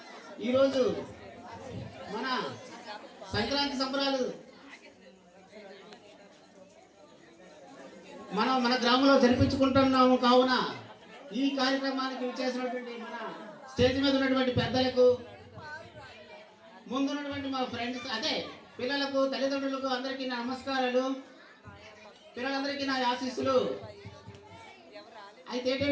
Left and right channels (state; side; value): identical; both; correlation 1.00